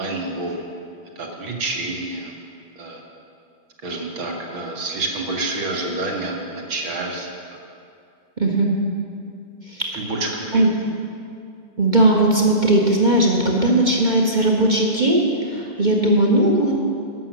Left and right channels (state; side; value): late; left; 2.1 ms